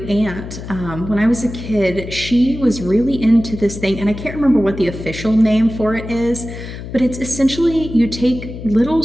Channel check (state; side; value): noise; left; hum, 10 dB below the sound